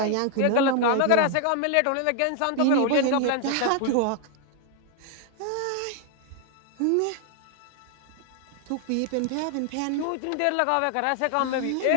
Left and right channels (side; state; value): both; different; correlation 0.00